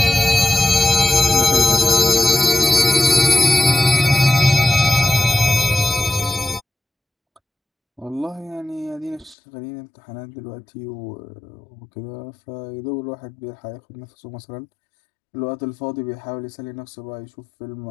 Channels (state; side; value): drops out; right; at 9.3 s